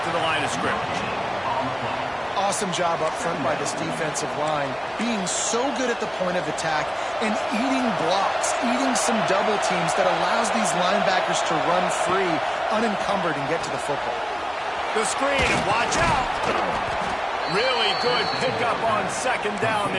to the line of scrimmage. Awesome job up front by this defensive line, being so good at the point of attack and eating blocks, eating some double teams that allows these linebackers to run free, unencumbered, and get to the football. The screen, watch out! Really good pickup on second down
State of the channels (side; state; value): both; identical; correlation 1.00